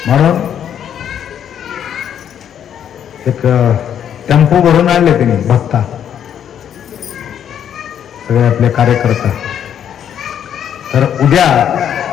म्हणून एक टेम्पो भरून आणले त्यांनी भक्ता, सगळे आपले कार्यकर्ता. तर उद्या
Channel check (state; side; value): quieter; right; 9.3 dB